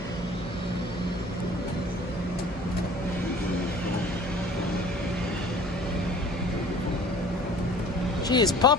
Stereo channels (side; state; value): both; normal; correlation 0.48